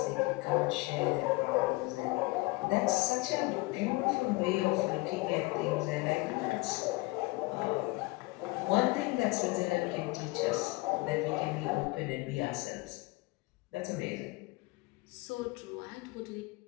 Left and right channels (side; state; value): right; quieter; 23.6 dB